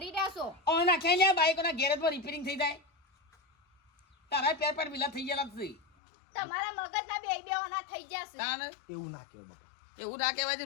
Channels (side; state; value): right; drops out; at 5.8 s